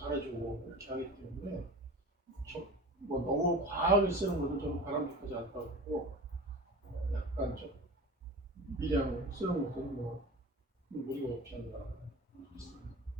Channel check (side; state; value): both; normal; correlation 0.34